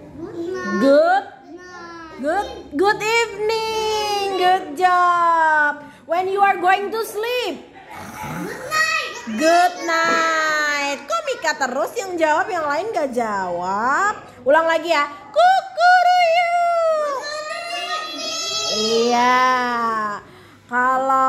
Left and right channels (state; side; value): identical; both; correlation 1.00